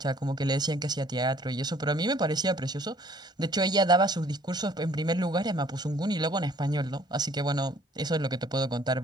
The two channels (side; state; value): both; normal; correlation 0.58